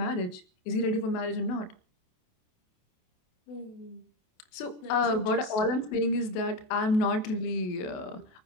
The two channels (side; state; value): right; late; 27 ms